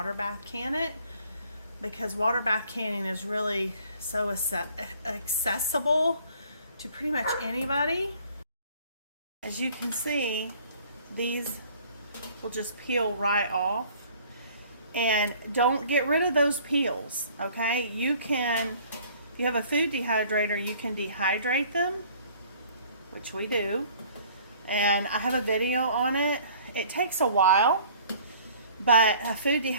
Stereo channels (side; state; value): both; inverted; correlation -0.54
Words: bath can it, because water bath canning is really so accessible to pretty much anybody. As you can see, these will just peel right off. And don't get rid of those peels, okay? You can, if you have a food dehydrator, you can dehydrate them, which we do. And I have a video on it. It takes a while, but a food